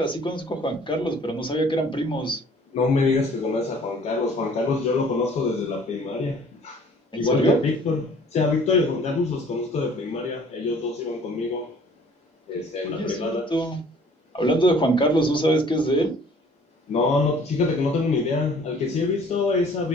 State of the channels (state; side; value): normal; both; correlation 0.54